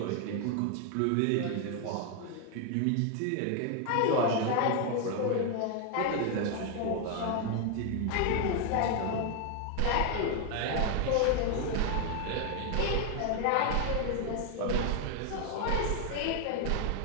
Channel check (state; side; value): different; both; correlation 0.01